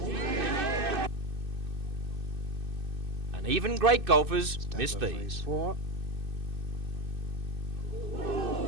And even great golfers miss these. So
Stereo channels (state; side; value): late; left; 2.6 ms